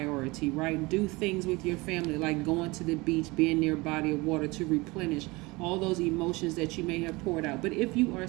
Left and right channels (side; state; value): left; quieter; 23.6 dB